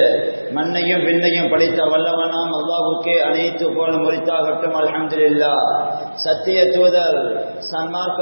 மண்ணையும் விண்ணையும் படைத்த வல்லவனாம் அல்லாஹ்வுக்கே அனைத்து புகழ் முறித்தாகட்டும். அல்ஹம்துலில்லாஹ். சத்திய தூதர்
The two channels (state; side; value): inverted; both; correlation -1.00